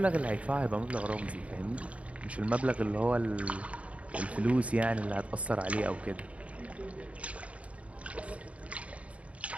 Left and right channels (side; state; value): left; late; 0.065 ms